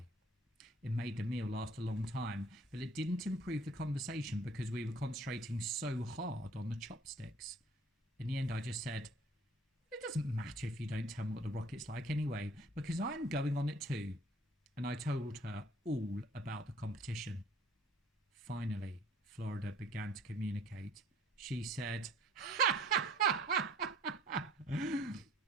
It made the meal last a long time, but it didn't improve the conversation because we were concentrating so hard on the chopsticks. In the end, I just said, "It doesn't matter if you don't tell me what the rocket's like anyway, because I'm going on it too." And I told her all about the competition. Finally, Florida began to communicate. She said,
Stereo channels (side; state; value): both; normal; correlation 0.55